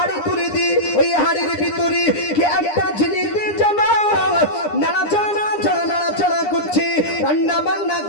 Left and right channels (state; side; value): late; right; 9.8 ms